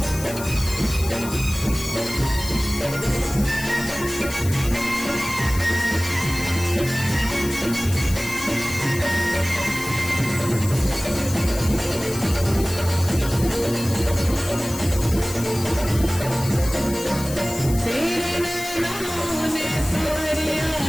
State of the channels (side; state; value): left; noise; hiss, 11 dB below the sound